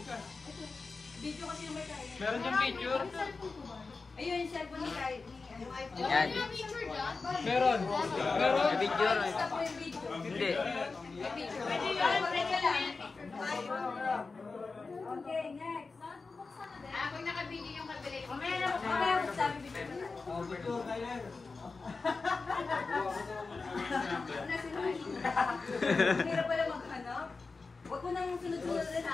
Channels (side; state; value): right; quieter; 4.1 dB